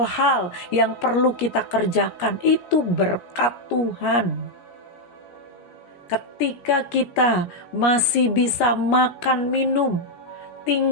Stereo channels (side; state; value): right; late; 17 ms